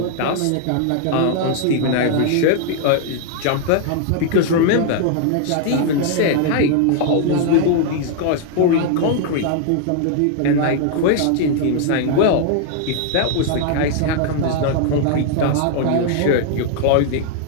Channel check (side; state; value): both; different; correlation 0.00